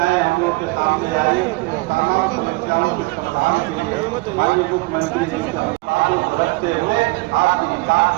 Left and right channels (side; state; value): left; quieter; 24.2 dB